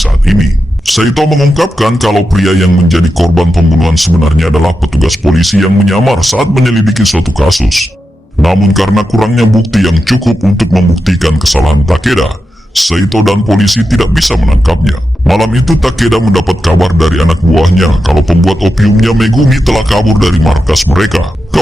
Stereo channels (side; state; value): both; normal; correlation 0.89